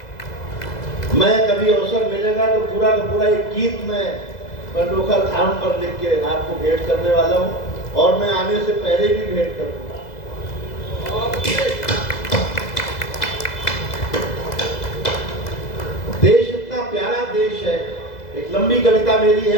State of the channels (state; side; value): late; right; 2.0 ms